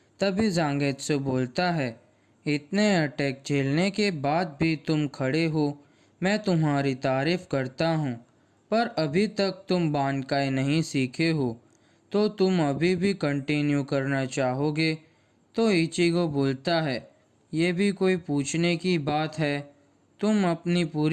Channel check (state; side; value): identical; both; correlation 1.00